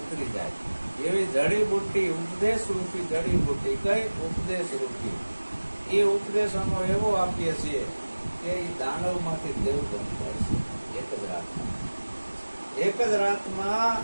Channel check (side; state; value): both; inverted; correlation -1.00